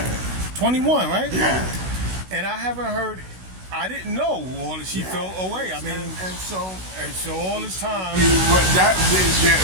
21, right? Yeah. And I haven't heard, I didn't know all that she felt away. I mean, and so all this time. That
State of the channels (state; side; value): late; left; 16 ms